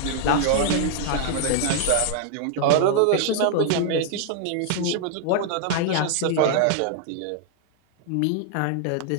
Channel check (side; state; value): both; different; correlation 0.00